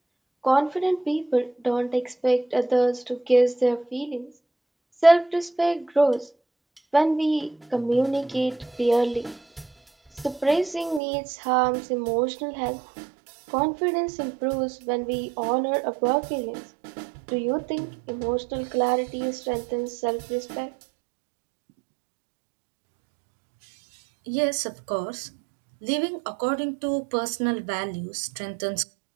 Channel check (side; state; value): left; drops out; at 11.0 s